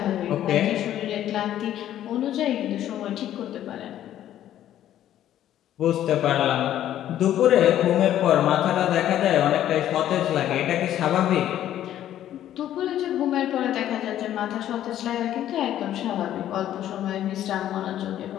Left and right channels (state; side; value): quieter; right; 11.9 dB